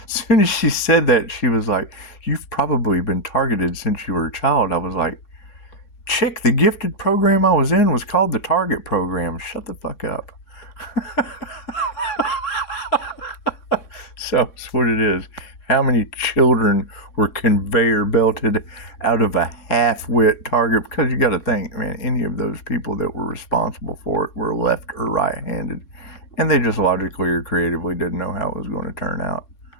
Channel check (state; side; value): late; right; 3.6 ms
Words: as she said that, she was like, "You've probably been targeted since you were a child." I was like, "Chick, the gifted program I was in was called the Target Program. Shut the fuck up." So that's what it is. How many children were conveyor belted out of a half-wit target? Because you got to think, man, any of those people that were responsible for it were left or right-handed, and they just logically or creatively didn't know how it was going to turn out.